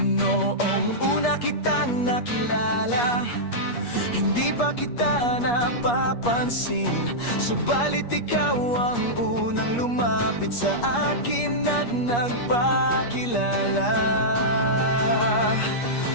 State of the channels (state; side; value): late; right; 8.4 ms